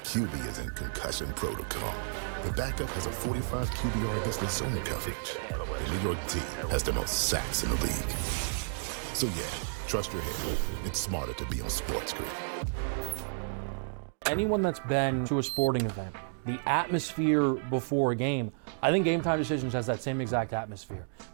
is in concussion protocol. The backup has a 45 QBR against the zone coverage. The New York D has the most sacks in the league. So yeah, trust your head. It's smarter to be on SportsGrid. Anyone that's been to a sporting event, the atmosphere before a game, I think Game Time Decisions has that same exact atmosphere.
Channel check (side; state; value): left; silent; digital silence